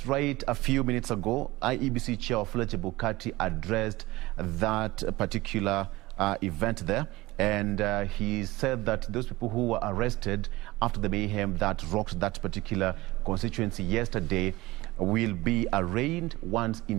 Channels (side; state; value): left; quieter; 19.7 dB